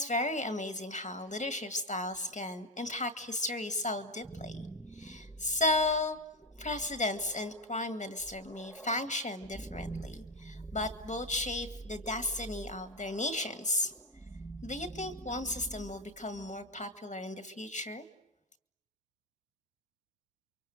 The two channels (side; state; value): both; normal; correlation 0.13